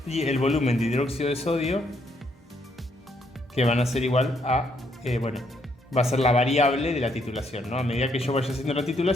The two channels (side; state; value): both; normal; correlation 0.73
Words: y el volumen de hidróxido de sodio que van a ser igual a, va a ser la variable de la titulación, ¿no? A medida que yo vaya haciendo la